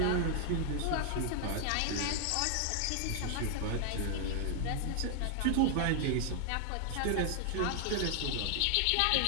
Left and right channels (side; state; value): both; different; correlation 0.00